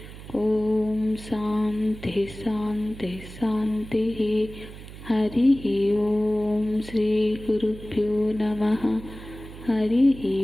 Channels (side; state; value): right; noise; hum, 15 dB below the sound